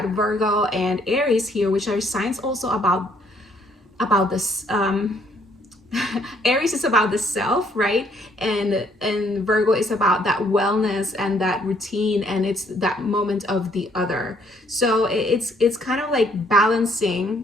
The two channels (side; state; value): both; normal; correlation 0.66